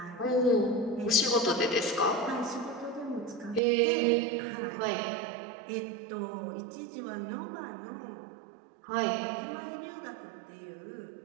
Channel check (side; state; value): left; drops out; at 3.6 s